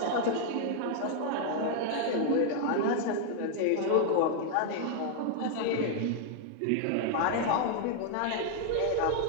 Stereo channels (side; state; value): both; different; correlation 0.00